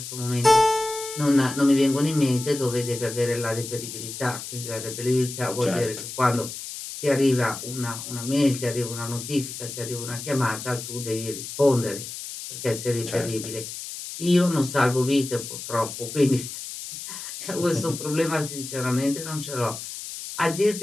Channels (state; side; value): noise; left; hiss, 9 dB below the sound